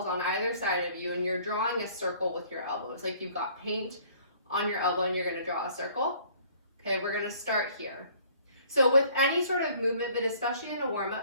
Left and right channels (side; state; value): both; inverted; correlation -0.56